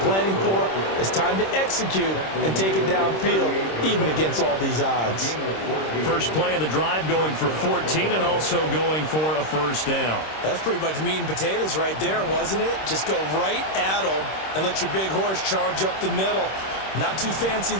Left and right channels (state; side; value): late; right; 26 ms